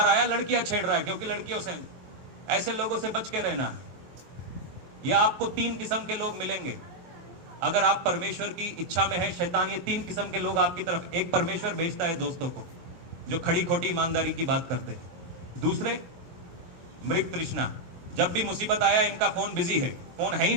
आया लड़कियां छेड़ रहा है, क्योंकि लड़कियों से ऐसे लोगों से बच के रहना है। या आपको 3 किस्म के लोग मिलेंगे अगर आप परमेश्वर की इच्छा में है। शैतान ये 3 किस्म के लोग आपकी तरफ, एक परमेश्वर भेजता है दोस्तों को जो खड़ी खोटी ईमानदारी की बात करते हैं। दूसरे मृग तृष्णा, जब भी मुसीबत आया इनका फोन बिजी है, फोन है ही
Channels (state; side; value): late; left; 23 ms